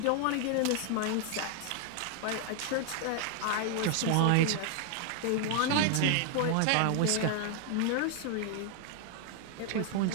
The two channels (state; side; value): different; both; correlation 0.00